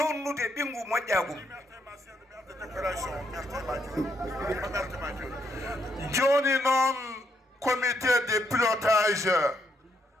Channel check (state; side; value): normal; both; correlation 0.75